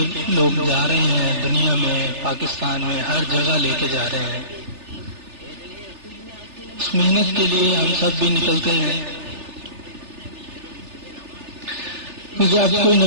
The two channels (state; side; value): late; left; 3.4 ms